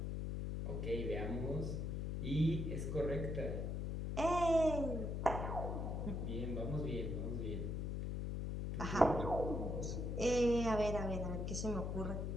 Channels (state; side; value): noise; left; hum, 2 dB below the sound